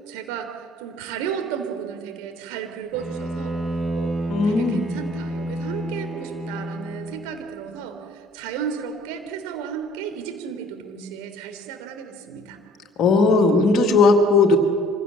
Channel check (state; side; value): normal; both; correlation 0.55